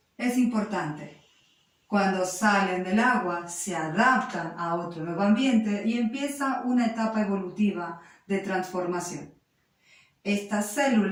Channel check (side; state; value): both; identical; correlation 1.00